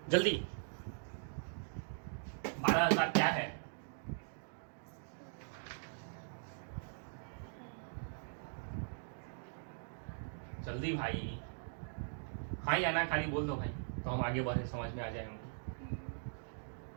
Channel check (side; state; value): left; silent; digital silence